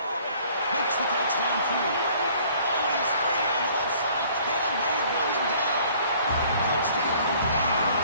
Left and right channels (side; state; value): both; inverted; correlation -0.56